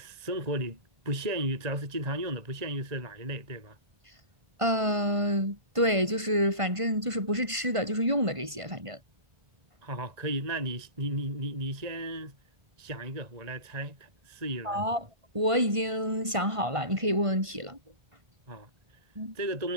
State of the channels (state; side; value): late; left; 1.5 ms